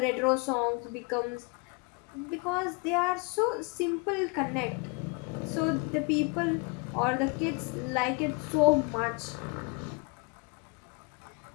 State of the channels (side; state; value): right; quieter; 28.8 dB